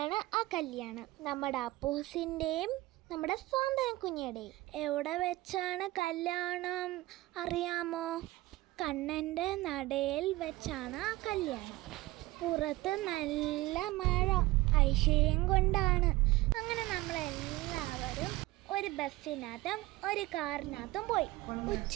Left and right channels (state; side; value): quieter; left; 19.1 dB